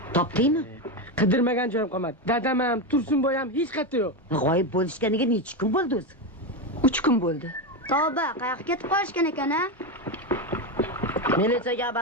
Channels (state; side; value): normal; both; correlation 0.12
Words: Topdingmi? Qidirmagan joyim qolmadi. Dadam ham, Tursunboy ham hech qayerda yo'q. G'oyib bo'lishganiga necha kun bo'ldi o'zi? 3 kun bo'ldi. Tavba, qayoqqa ketib qolishgan ekan-a? Militsiyaga